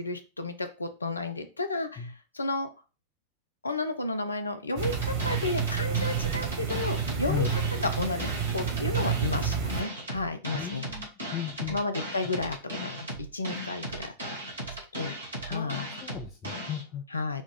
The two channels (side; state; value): both; inverted; correlation -0.38